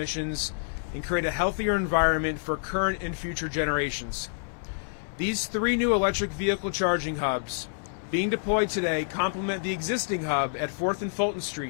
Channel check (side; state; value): right; silent; 59 dB below the other